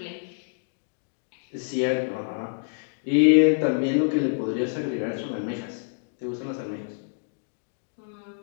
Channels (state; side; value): silent; right; digital silence